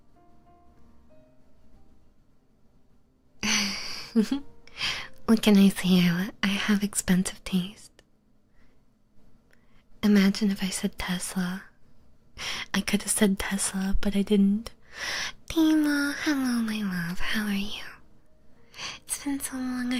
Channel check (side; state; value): both; identical; correlation 1.00